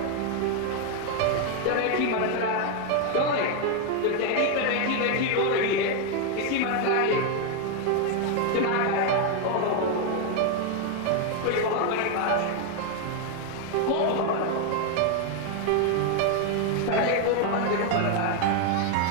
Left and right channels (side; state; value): both; different; correlation 0.01